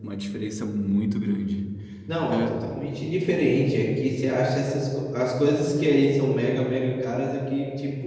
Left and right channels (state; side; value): identical; both; correlation 1.00